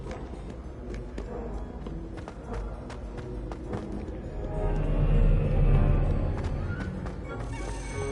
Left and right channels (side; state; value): both; identical; correlation 1.00